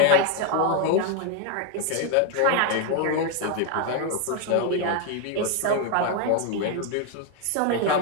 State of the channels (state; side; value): different; both; correlation 0.01